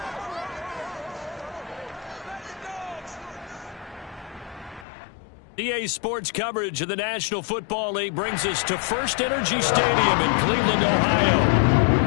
EA Sports coverage of the National Football League brings us to First Energy Stadium in Cleveland, Ohio.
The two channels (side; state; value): right; drops out; at 4.9 s